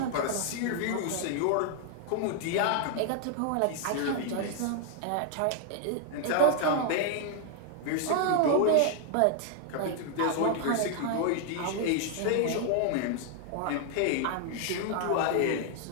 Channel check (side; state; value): both; different; correlation 0.00